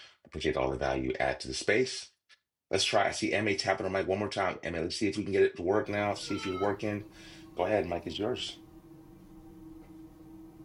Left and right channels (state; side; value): identical; both; correlation 1.00